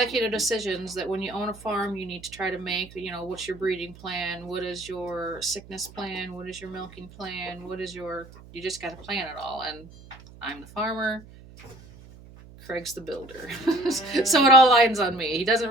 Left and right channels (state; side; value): noise; right; hum, 20 dB below the sound